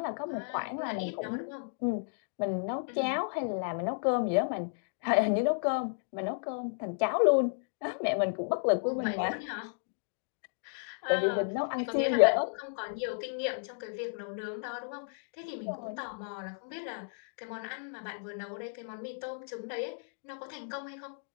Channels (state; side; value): silent; right; digital silence